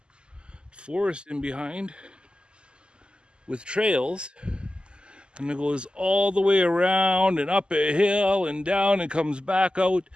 forest in behind with trails. And it goes all the way around and up a hill and down and comes back out.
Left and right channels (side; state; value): left; late; 0.050 ms